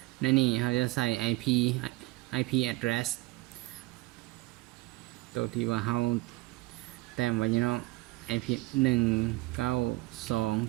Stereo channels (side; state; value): left; quieter; 21.4 dB